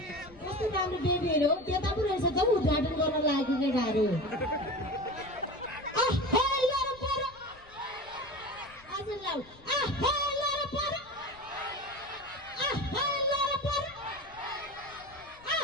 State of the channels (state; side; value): noise; left; rumble, 24 dB below the sound